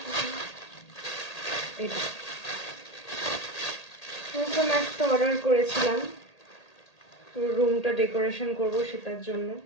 এটা নতুন একটা অর্ডার করেছিলাম, রুমটা ডেকোরেশন করব সেটার জন্য।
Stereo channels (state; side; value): late; right; 1.8 ms